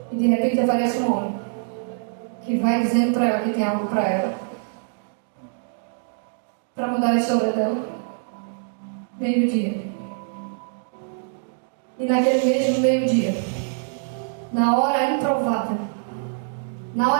E de repente aparece um homem que vai dizendo para ela que tem algo para ela, para mudar a história dela. Meio-dia. E naquele mesmo meio-dia, na hora improvável, na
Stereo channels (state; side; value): silent; left; digital silence